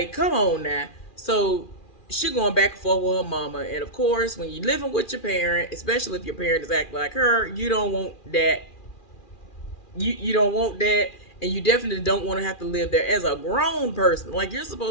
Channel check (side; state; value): right; late; 2.4 ms